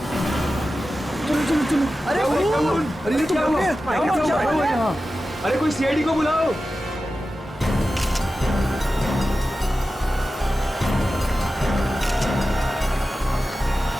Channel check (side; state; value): both; normal; correlation 0.93